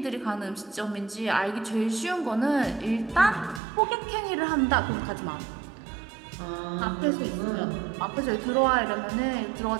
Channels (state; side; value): drops out; left; at 3.6 s